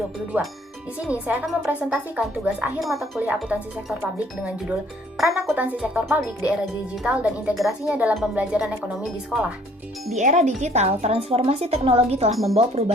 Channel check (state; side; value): normal; both; correlation 0.59